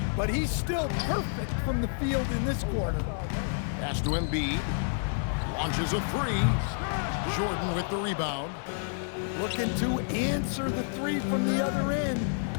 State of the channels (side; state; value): right; silent; digital silence